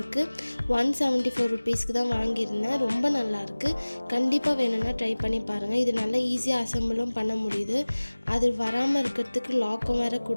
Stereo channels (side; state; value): both; inverted; correlation -1.00